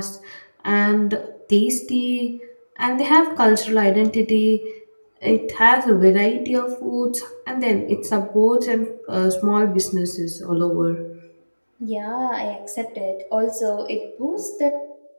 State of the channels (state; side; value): inverted; both; correlation -1.00